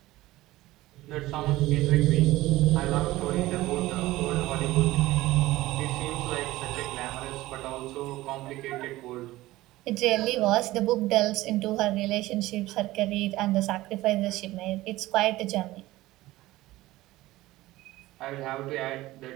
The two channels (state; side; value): quieter; left; 17.6 dB